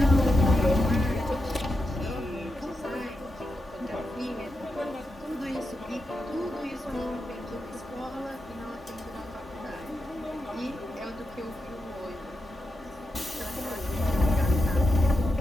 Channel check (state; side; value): normal; both; correlation 0.87